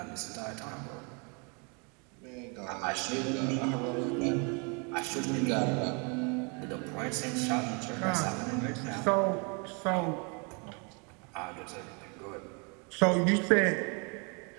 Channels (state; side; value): quieter; left; 33.7 dB